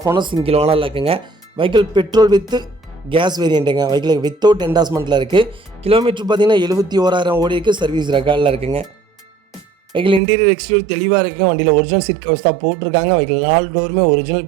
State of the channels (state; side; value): drops out; left; at 10.2 s